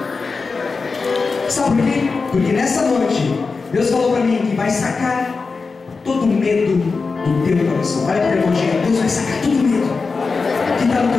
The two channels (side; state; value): right; quieter; 4.4 dB